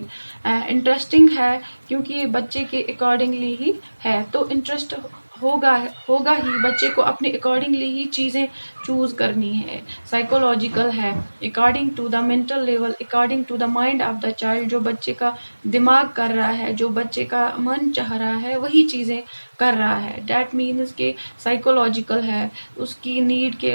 Interesting है क्योंकि ये बच्चे के accordingly ही है, तो interest होगा होगा ही, बच्चे को अपने अकॉर्डिंगली ही चीज़ें चूज करनी है. साइकोलॉजिकल है, according to the mental level, according to the mind of the child. जो बच्चे का दिमाग कर रहा है, जो बच्चे का मन चाह रहा है, वही चीज़ें कर रहा है. डैट मीन्स के साइकोलॉजिकल है, उसकी नीड के,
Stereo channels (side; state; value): both; inverted; correlation -1.00